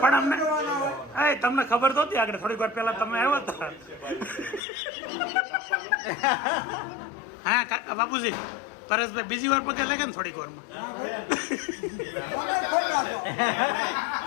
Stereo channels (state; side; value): drops out; right; at 4.6 s